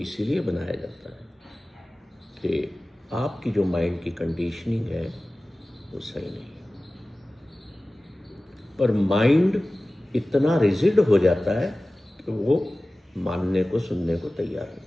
बनाया जाता है कि आपकी जो माइंड की कंडीशनिंग है वो सही नहीं है। पर माइंड इतना रिजिड हो जाता है कि वो मानने को, सुनने को तैयार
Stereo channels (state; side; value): normal; both; correlation 0.97